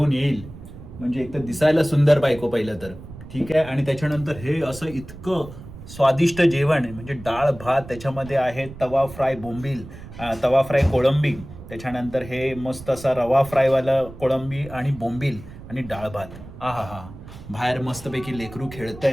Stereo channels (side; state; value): right; noise; rumble, 15 dB below the sound